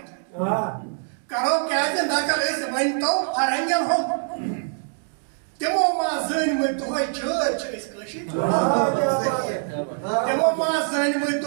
کرو کیازِ نقل أسۍ ونتو فرہنگن ہُنٛد تمو ما زٲنمٕتۍ دۄہے چھٲتۍ چھِ أسۍ کٲشِرۍ تمو ما زٲنمٕتۍ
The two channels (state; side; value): silent; left; 61 dB below the other